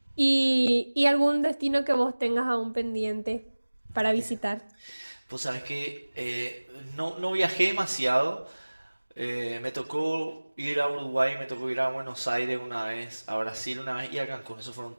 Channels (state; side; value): inverted; both; correlation -1.00